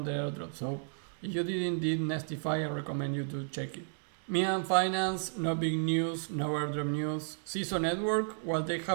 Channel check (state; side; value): silent; left; 56 dB below the other